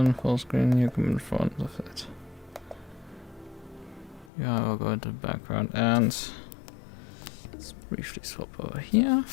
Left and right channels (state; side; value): drops out; right; at 4.3 s